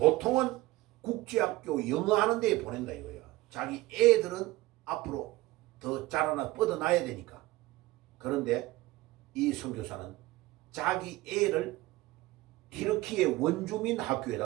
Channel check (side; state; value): left; quieter; 19.0 dB